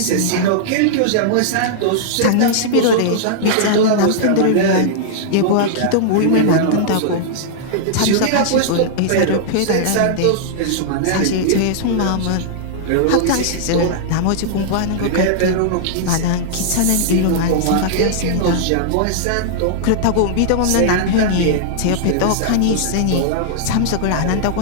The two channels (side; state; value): both; different; correlation -0.01